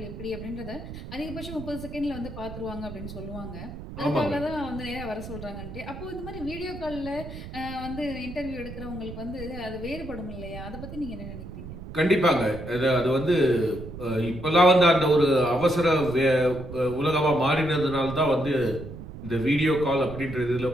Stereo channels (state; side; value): noise; right; rumble, 11 dB below the sound